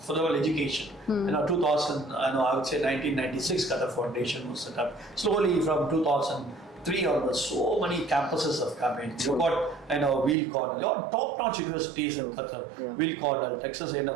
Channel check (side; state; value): left; drops out; at 10.4 s